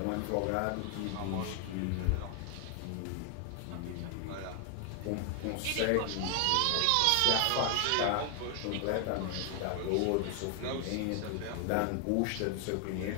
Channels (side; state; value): both; different; correlation 0.00